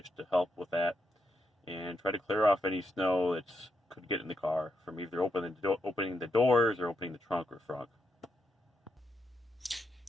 to help with that. and try to clear off any snow that could get in the car from either opening the doors or opening the trunk or front.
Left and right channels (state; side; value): normal; both; correlation 0.82